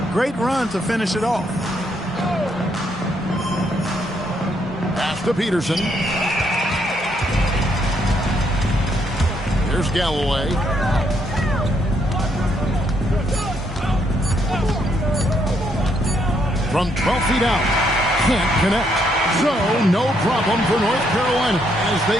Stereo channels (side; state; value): both; normal; correlation 0.73